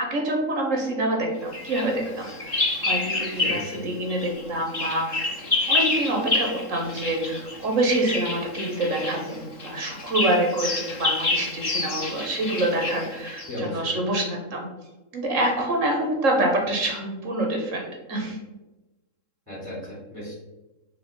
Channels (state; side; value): late; left; 3.7 ms